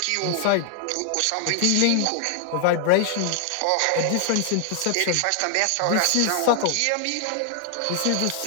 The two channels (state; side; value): different; both; correlation 0.00